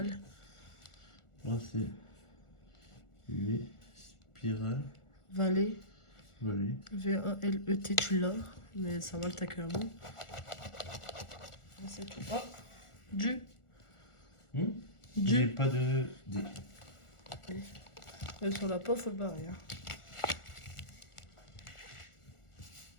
Là c'est U, spirale, Vallée. vallée. V-A-L-E-T, tu l'as. Mais ça va, t'as que un mot. C'est tout. Oh. Du. J'ai Du. pas de D. Sur la peau, faut le barrer. Hein.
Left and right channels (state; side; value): late; right; 1.4 ms